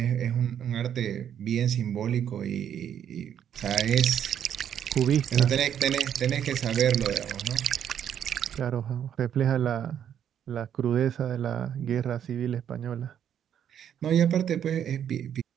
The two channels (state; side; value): quieter; left; 9.3 dB